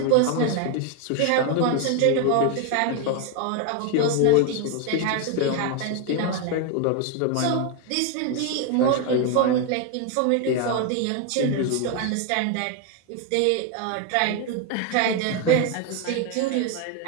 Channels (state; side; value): different; both; correlation 0.01